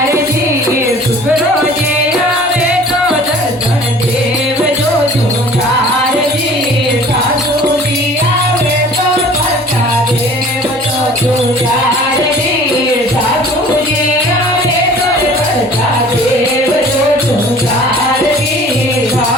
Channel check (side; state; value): both; normal; correlation 0.47